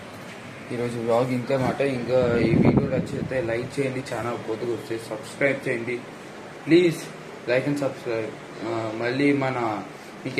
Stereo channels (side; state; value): both; identical; correlation 1.00